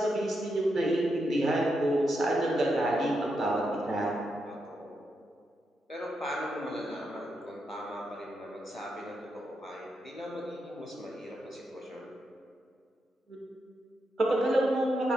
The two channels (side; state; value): both; normal; correlation 0.83